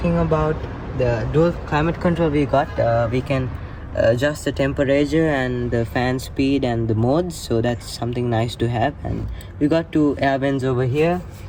about the dual climate control we got, we can adjust the temperature and the fan speed and the modes, so that's something nice to have. And we got 2 air vents over here,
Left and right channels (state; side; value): identical; both; correlation 1.00